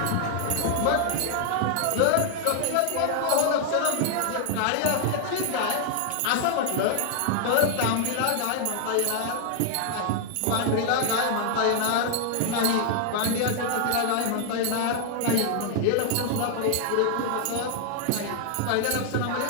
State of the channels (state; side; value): different; both; correlation 0.00